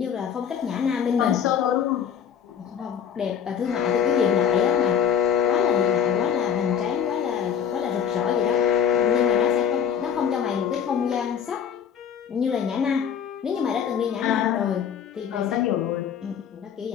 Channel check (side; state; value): right; quieter; 8.1 dB